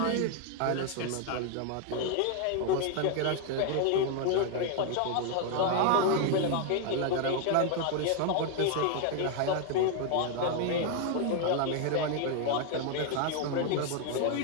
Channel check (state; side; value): different; both; correlation 0.00